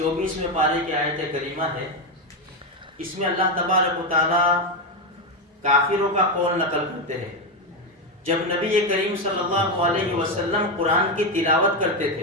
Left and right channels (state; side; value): normal; both; correlation 0.09